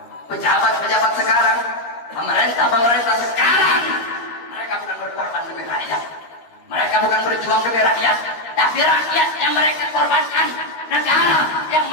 Pejabat-pejabat sekarang, pemerintah sekarang, mereka bukan berkorban demi rakyat, mereka bukan berjuang demi rakyat, tapi rakyat yang mereka korbankan, negara yang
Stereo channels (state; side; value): late; right; 13 ms